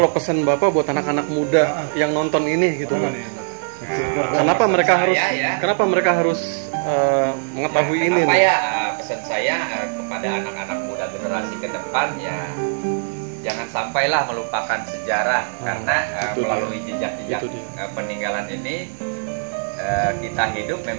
pesan Bapak buat anak-anak muda yang nonton ini gitu kan. Nah, Kenapa pesan mereka saya harus ya, kenapa mereka harus mengetahui ini kenapa nih? ya pesan saya kepada anak-anak muda generasi ke depan ya jangan sampailah melupakan sejarah karena itu dia. melalui jejak-jejak Itu dia. peninggalan ini kita hidup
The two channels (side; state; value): left; silent; digital silence